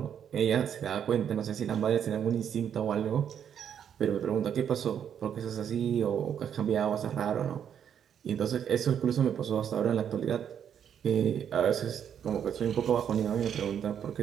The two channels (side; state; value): left; quieter; 8.7 dB